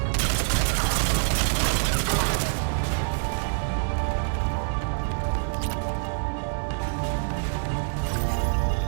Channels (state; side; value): silent; left; 61 dB below the other